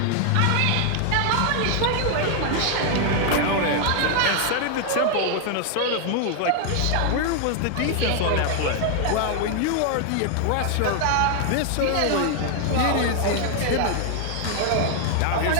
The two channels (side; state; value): both; different; correlation 0.00